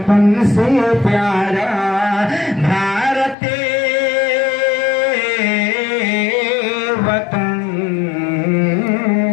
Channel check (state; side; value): drops out; right; at 3.4 s